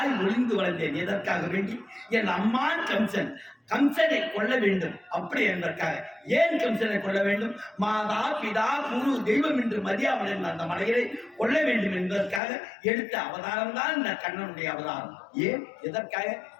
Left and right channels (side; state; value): right; drops out; at 12.4 s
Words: ஒளிந்து வளர்ந்தேன். எதற்காக வேண்டி என் அம்மான் கம்சன் கம்சனை கொள்ள வேண்டும் அப்படி என்பதற்காக. ஏன் கம்சனை கொள்ள வேண்டும்? மாதா பிதா குரு தெய்வம் என்று மதியாவன் அந்த மலையை கொள்ள வேண்டும் என்பதற்காக எடுத்த அவதாரம் தான் இந்த கண்ணனுடைய அவதாரம். ஏன் எதற்காக?